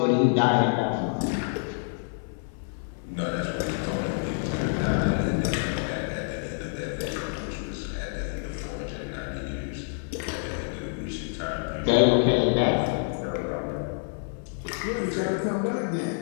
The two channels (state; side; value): silent; right; digital silence